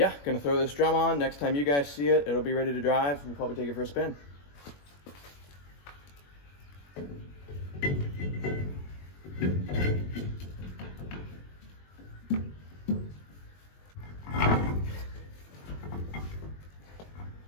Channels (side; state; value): right; late; 21 ms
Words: gonna throw this drum on. Next time you guys see it, it'll be ready to drive. We'll probably take it for a spin.